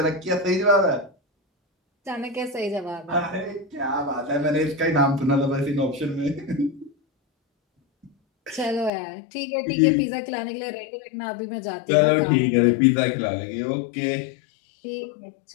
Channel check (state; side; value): drops out; right; at 8.9 s